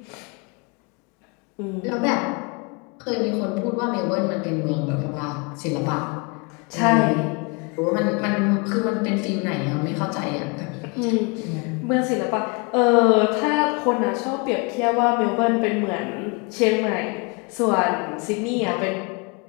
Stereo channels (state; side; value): quieter; right; 31.3 dB